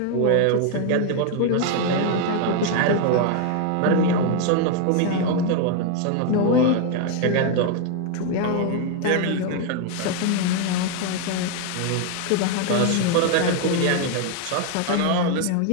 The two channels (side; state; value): both; different; correlation 0.01